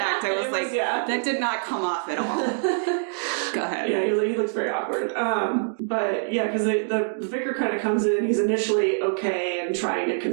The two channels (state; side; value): silent; left; digital silence